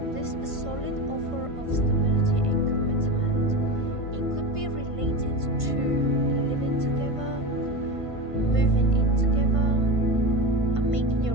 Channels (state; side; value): late; left; 1.5 ms